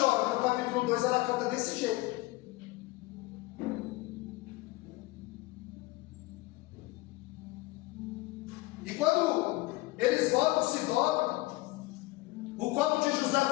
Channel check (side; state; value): right; quieter; 20.8 dB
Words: mas no capítulo 2 ela canta desse jeito. E quando eles voltam, se dobram, o copo de José